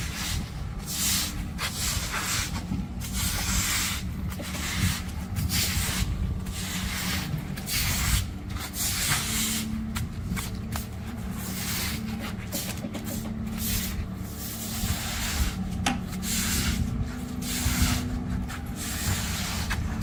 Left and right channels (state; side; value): identical; both; correlation 1.00